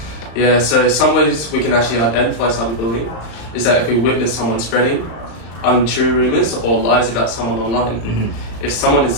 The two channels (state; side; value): late; right; 35 ms